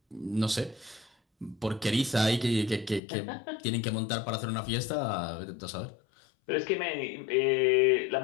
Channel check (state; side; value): drops out; right; at 3.0 s